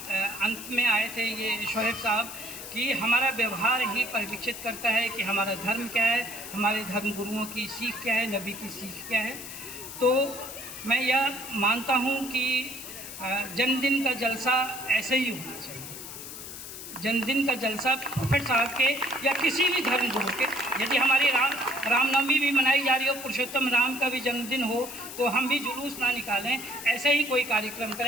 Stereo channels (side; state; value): left; noise; hiss, 11 dB below the sound